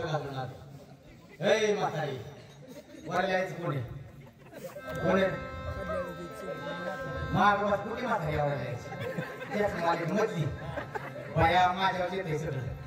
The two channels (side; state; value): both; identical; correlation 1.00